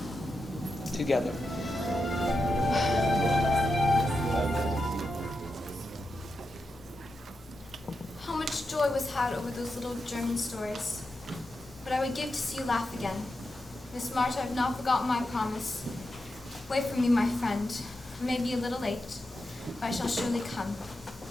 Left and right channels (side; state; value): both; normal; correlation 0.88